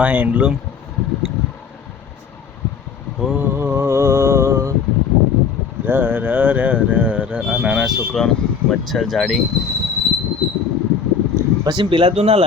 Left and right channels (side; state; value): right; quieter; 6.2 dB